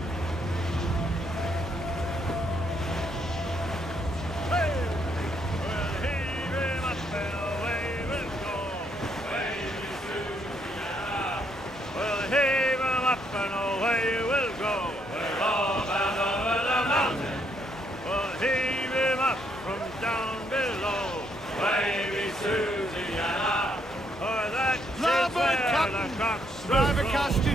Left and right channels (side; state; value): both; normal; correlation 0.73